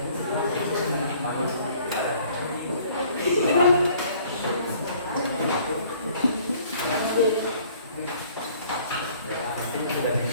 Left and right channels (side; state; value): both; inverted; correlation -0.56